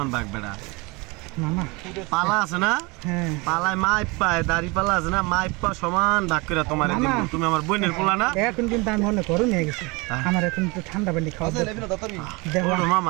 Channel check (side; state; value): left; quieter; 26.5 dB